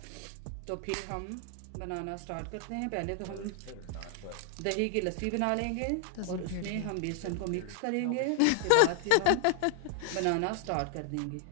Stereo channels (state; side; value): different; both; correlation 0.00